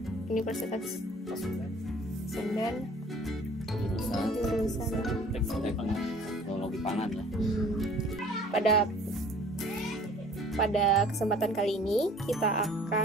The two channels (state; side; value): normal; both; correlation 0.51